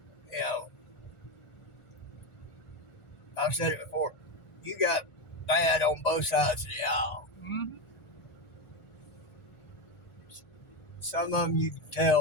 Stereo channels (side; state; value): right; late; 1.4 ms